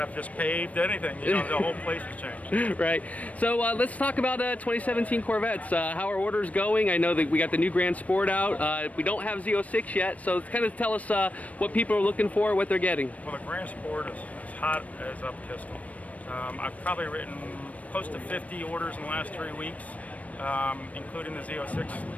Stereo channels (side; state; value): right; late; 0.068 ms